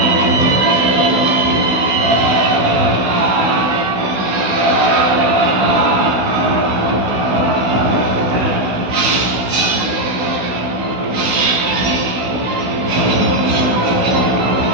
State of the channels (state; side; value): late; left; 16 ms